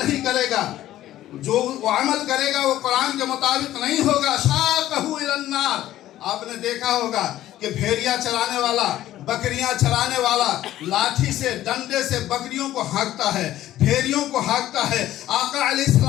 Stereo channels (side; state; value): right; quieter; 13.7 dB